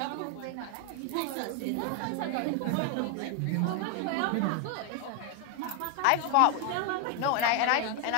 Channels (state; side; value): different; both; correlation 0.01